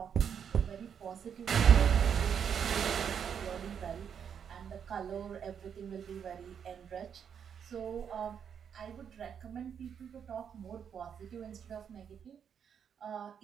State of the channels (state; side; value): quieter; left; 7.7 dB